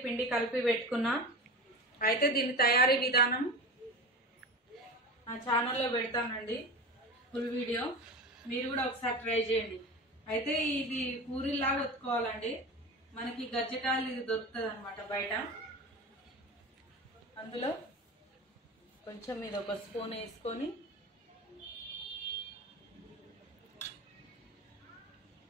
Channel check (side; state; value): both; normal; correlation 0.29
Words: పిండి కలిపి పెట్టుకున్నా. అయితే దీని తయారీ విధానం నా ఛానల్లో పెడతానండి, ఫుల్ వీడియో. మీరు కూడా ఒకసారి ట్రై చేయండి. అయితే ఇది పూరీలాగా ఒత్తుకోవాలండి. మనకి గజ్జకాయలు ఇది దొరుకుతుంది అనమాట బయట. అందులో కొంచెం ఇది ఒక స్పూన్ వేసుకొని